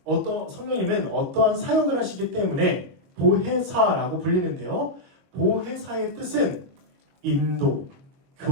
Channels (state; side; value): late; left; 22 ms